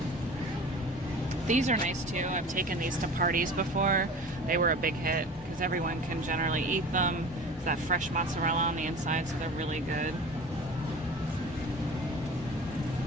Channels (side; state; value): both; normal; correlation 0.38